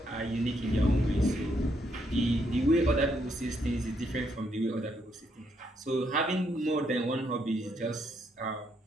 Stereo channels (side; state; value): both; normal; correlation 0.75